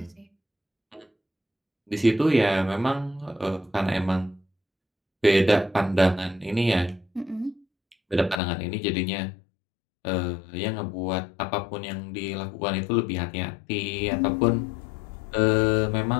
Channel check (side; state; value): right; drops out; at 8.4 s